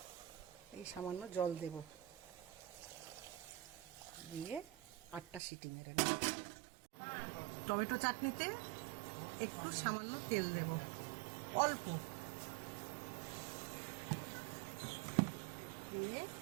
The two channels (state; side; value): drops out; left; at 5.4 s